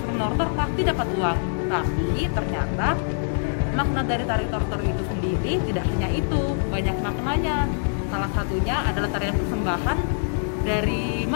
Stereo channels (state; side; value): silent; right; digital silence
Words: menortor pasti dapat uang. Tapi ternyata, makna dari tari tortor itu sendiri tidak hanya itu, banyak maknanya. Salah satunya adalah tarian persembahan dari